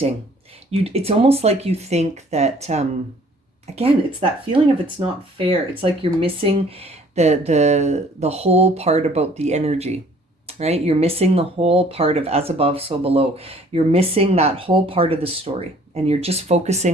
It's almost like you think that, again, it's that feeling of it's not fair. It's like you're missing the whole part about the energy, right? You're missing the whole part of as above, so below. You're missing that whole part of the story, and you're just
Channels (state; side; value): normal; both; correlation 0.56